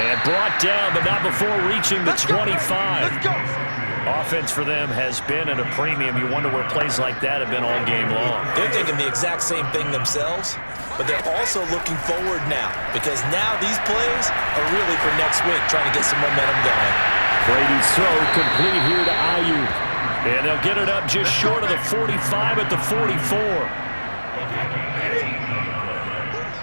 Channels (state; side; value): inverted; both; correlation -1.00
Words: brought down, but not before reaching the 25. Offense for them has been at a premium. You wonder where plays like that have been all game long. They're thinking the exact same thing themselves, but they're also looking forward now because now these plays are really for next week, trying to get some momentum going. Brady's throw complete here to Ayuk. And they'll get it up just short of the 45 at the 44.